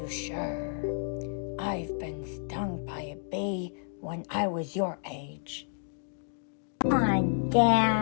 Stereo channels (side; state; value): right; silent; digital silence